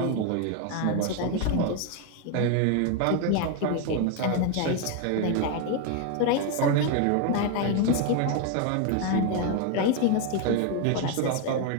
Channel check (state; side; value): different; both; correlation 0.01